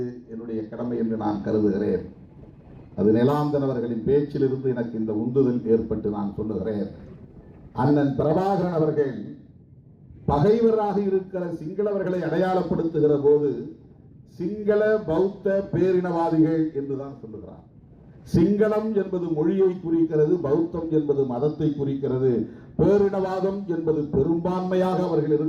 என்னுடைய கடமை என்று நான் கருதுகிறேன். அது நிலாந்தன் அவர்களின் பேச்சிலிருந்து எனக்கு இந்த உந்துதல் ஏற்பட்டு நான் சொல்லுகிறேன். அண்ணன் பிரபாகரன் அவர்கள் பகைவராக இருக்கிற சிங்களவர்களை அடையாளப்படுத்துகிற போது சிங்கள பௌத்த பேரினவாதிகள் என்றுதான் சொல்லுகிறார். சிங்களம் என்பது மொழியை குறிக்கிறது, பௌத்தம் என்பது மதத்தை குறிக்கிறது, பேரினவாதம் என்பது பெரும்பான்மையாக அவர்கள்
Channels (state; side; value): identical; both; correlation 1.00